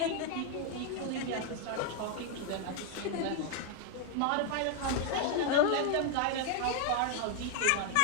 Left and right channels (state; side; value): different; both; correlation 0.01